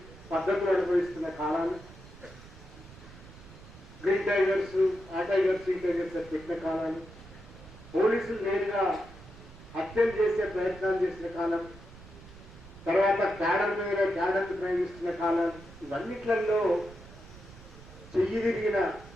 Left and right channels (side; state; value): right; noise; rumble, 19 dB below the sound